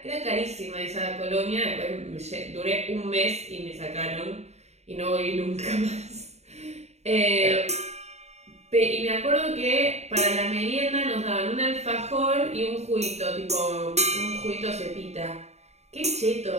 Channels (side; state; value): left; late; 0.32 ms